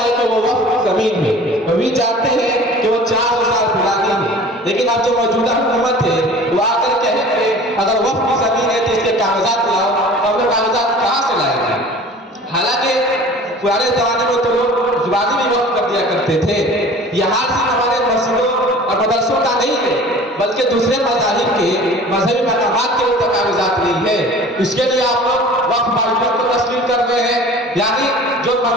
ہے کہ وہ وقف کی زمین ہے، وہ بھی جانتے ہیں کہ وہ 400 سال پرانی ہے، لیکن اب جو موجودہ حکومت ہے وہ آ کر کہیں کہ اگر وقف کی زمین ہے تو اس کے کاغذات لاؤ، تو ہم لوگ کاغذات کہاں سے لائیں گے؟ حالانکہ پرانے زمانے میں تو لوگ زبانی بھی وقف کر دیا کرتے تھے۔ یہ حال صرف ہمارے مسجدوں اور مدرسوں کا نہیں ہے بلکہ دوسرے مذاہب کے مذہبی مقامات کے اوپر کاغذات نہیں ہے۔ اس کے لیے آپ لوگ وقف معلومات کو تسلیم کر رہے ہیں، یعنی جو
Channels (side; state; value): both; normal; correlation 0.44